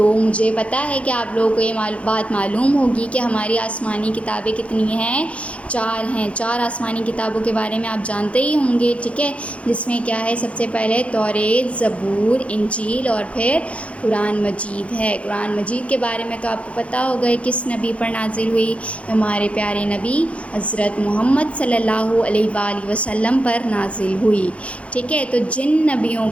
مجھے پتہ ہے کہ آپ لوگوں کو یہ بات معلوم ہوگی کہ ہماری آسمانی کتابیں کتنی ہیں؟ 4 ہیں۔ 4 آسمانی کتابوں کے بارے میں آپ جانتے ہی ہوں گے، ٹھیک ہے، جس میں کیا ہے؟ سب سے پہلے توریت، زبور، انجیل اور پھر قرآن مجید ہے۔ قرآن مجید کے بارے میں تو آپ کو پتہ ہوگا کس نبی پر نازل ہوئی؟ ہمارے پیارے نبی حضرت محمد صلی اللہ علیہ وآلہ وسلم پر نازل ہوئی۔ ٹھیک ہے، تو جن نبیوں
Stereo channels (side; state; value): right; late; 0.063 ms